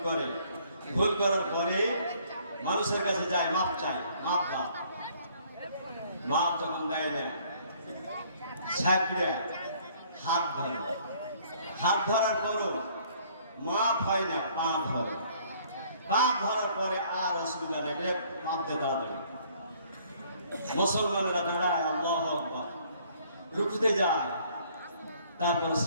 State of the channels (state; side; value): inverted; both; correlation -0.60